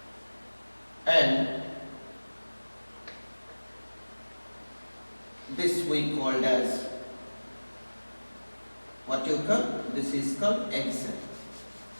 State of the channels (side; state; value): both; inverted; correlation -1.00